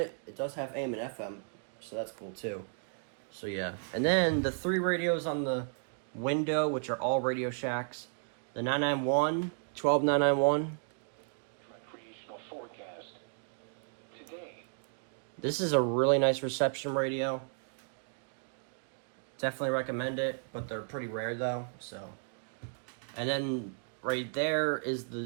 It does have AM and FM, so that's cool too. So yeah, and then the 3 radios on the window, which are all Radio Shacks. The 991, 12991. Recreational forecast. Today. This is a really nice reception radio. Definitely recommend it, but they're pretty rare though, so. And then right there is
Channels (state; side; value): silent; left; digital silence